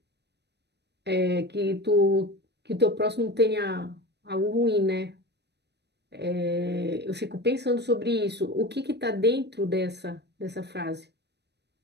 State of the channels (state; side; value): late; left; 0.49 ms